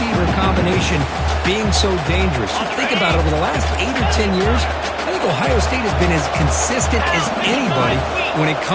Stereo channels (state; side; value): identical; both; correlation 1.00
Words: combination being so dangerous. You think about it, over the last 8 or 10 years, I think Ohio State has been as consistent as anybody when it